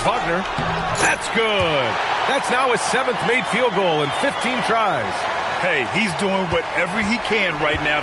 Wagner. That's good. That's now his 7th made field goal in 15 tries. Hey, he's doing whatever he can right now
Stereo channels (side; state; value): both; identical; correlation 1.00